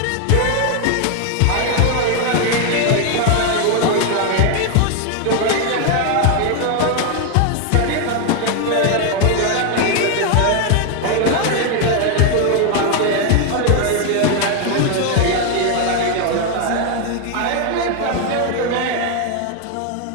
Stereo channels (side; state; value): both; different; correlation 0.01